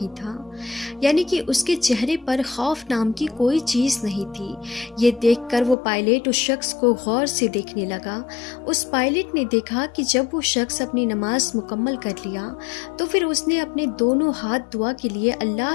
تھا، یعنی کہ اس کے چہرے پر خوف نام کی کوئی چیز نہیں تھی۔ یہ دیکھ کر وہ پائلٹ اس شخص کو غور سے دیکھنے لگا۔ اس پائلٹ نے دیکھا کہ جب وہ شخص اپنی نماز مکمل کر لیا تو پھر اس نے اپنے دونوں ہاتھ دعا کے لیے اللہ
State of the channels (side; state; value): right; drops out; at 5.8 s